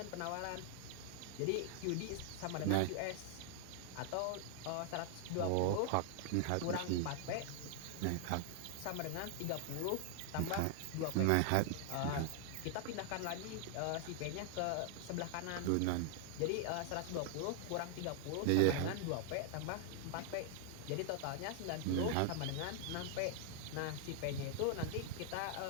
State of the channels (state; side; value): different; both; correlation 0.00